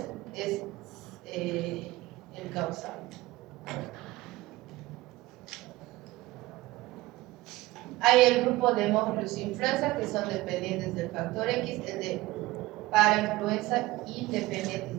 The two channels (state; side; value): quieter; left; 19.0 dB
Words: es el causal. Hay el grupo de Haemophilus influenza que son dependientes del factor X, el de parainfluenza